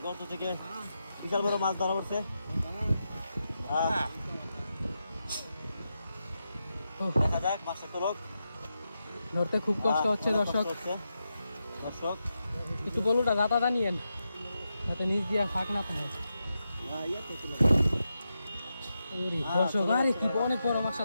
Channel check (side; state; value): both; inverted; correlation -0.88